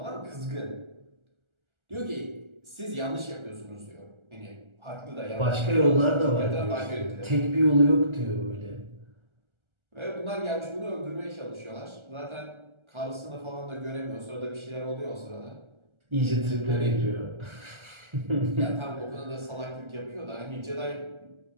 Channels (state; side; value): late; left; 1.4 ms